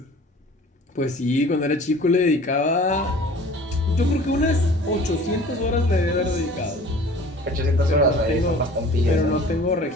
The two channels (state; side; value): normal; both; correlation 0.46